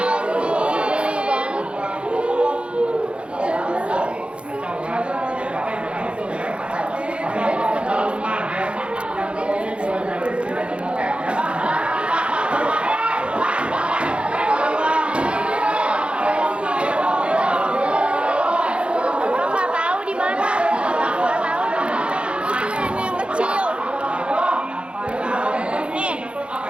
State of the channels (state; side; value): late; left; 0.058 ms